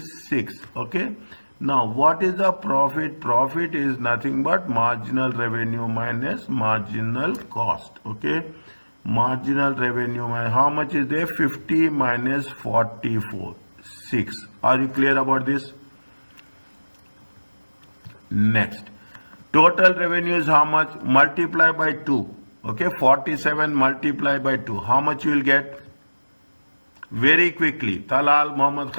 6. Okay. Now what is the profit? Profit is nothing but marginal revenue minus marginal cost. Okay. Marginal revenue minus how much is there? 50 minus 44. 6. Are you clear about this? Next. Total revenue is how much? Multiply by 2. Okay, 47 multiply by 2. How much you will get? Very quickly. Talal, Mohammed,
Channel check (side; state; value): both; inverted; correlation -1.00